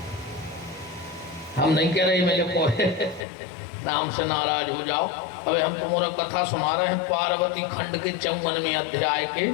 हम नहीं कह रहे मेरे कोहे नाम से नाराज हो जाओ। अबे हम तुम्हारा कथा सुना रहे हैं पार्वती खंड के 54वें अध्याय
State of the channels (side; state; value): right; drops out; at 3.2 s